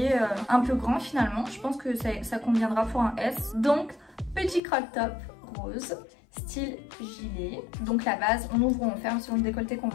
un peu grand finalement. Je pense que ça conviendra pour un S. Donc, petit crop top rose. Style gilet, donc la base on ouvre ou on ferme selon le décolleté qu'on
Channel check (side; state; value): right; drops out; at 4.6 s